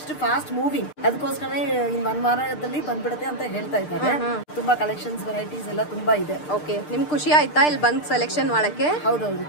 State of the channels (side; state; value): right; late; 6.6 ms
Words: ಫಾಸ್ಟ್ ಮೂವಿಂಗ್. ಅದಕ್ಕೋಸ್ಕರ ಇನ್ 1 ವಾರದಲ್ಲಿ ಬಂದ್ಬಿಡುತ್ತೆ ಅಂತ ಹೇಳ್ತಾ ಇದ್ದಾರೆ. ತುಂಬಾ ಕಲೆಕ್ಷನ್ಸ್ ವೆರೈಟೀಸ್ ಎಲ್ಲ ತುಂಬಾ ಇದೆ. ಓಕೆ, ನಿಮ್ಗೆ ಖುಷಿ ಆಯ್ತಾ ಇಲ್ಲಿ ಬಂದ್ ಸೆಲೆಕ್ಷನ್ ಮಾಡಕ್ಕೆ? ಹೌದೌದು,